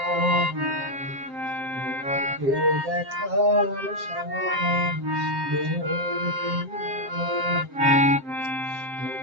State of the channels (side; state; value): left; late; 7.6 ms